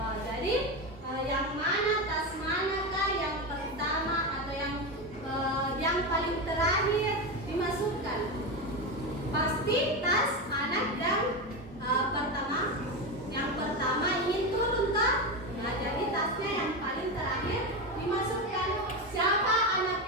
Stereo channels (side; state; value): both; normal; correlation 0.16